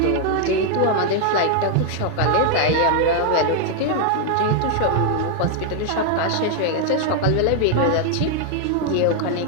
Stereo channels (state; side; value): different; both; correlation 0.00